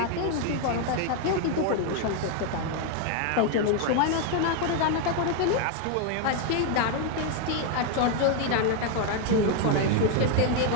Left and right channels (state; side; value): different; both; correlation 0.01